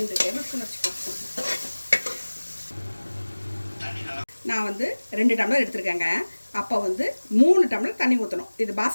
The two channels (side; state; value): both; inverted; correlation -1.00